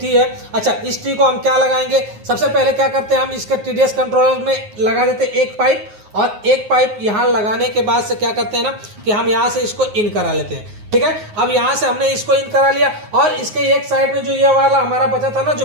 टी है। अच्छा, इस टी को हम क्या लगाएंगे, सबसे पहले क्या करते हैं, हम इसके टीडीएस कंट्रोलर में लगा देते हैं एक पाइप, और एक पाइप यहां लगाने के बाद से क्या करते हैं ना कि हम यहां से इसको इन करा लेते हैं। ठीक है। अब यहाँ से हमने इसको इन करा लिया और इसके एक साइड में जो ये वाला हमारा बचा था ना, जो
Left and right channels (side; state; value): left; late; 9.5 ms